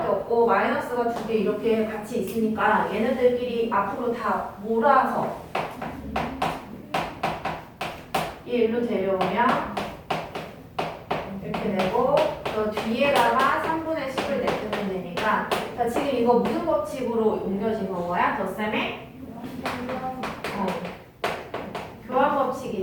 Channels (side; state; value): both; identical; correlation 1.00